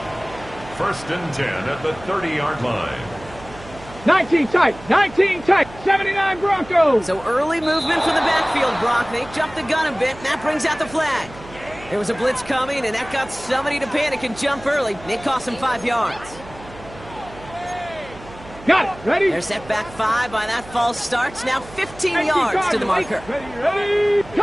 First and 10 at the 30-yard line. 19 tight. 19 tight. 79 Broncos. So early movement from the backfield, Brock. They jumped the gun a bit, and that brings out the flag. There was a blitz coming, and that got somebody to panic and jump early. It cost them 5 yards. Got it. Ready? They're set back 5 by that false start. Now 15 yards to the marker. Ready.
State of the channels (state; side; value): noise; right; hum, 18 dB below the sound